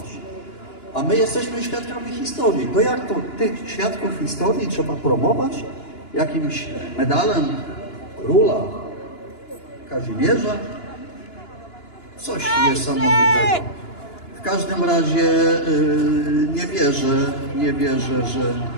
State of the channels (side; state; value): right; late; 2.9 ms